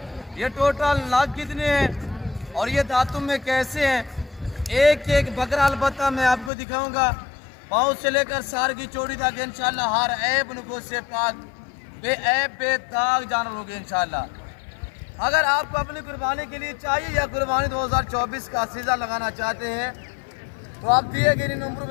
ये टोटल लाख कितने हैं और ये दांतों में कैसे हैं, एक एक बकरा अलबत्ता मैं आपको दिखाऊंगा। पाँव से लेकर सार की चोटी तक इंशाल्लाह हर ऐब नुको से पाक बेऐब बेदाग जानवर होंगे इंशाल्लाह। अगर आपको अपनी कुर्बानी के लिए चाहिए या कुर्बानी 2024 का सीज़ा लगाना चाहते हैं तो आप दिए गए नंबर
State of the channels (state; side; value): drops out; right; at 6.5 s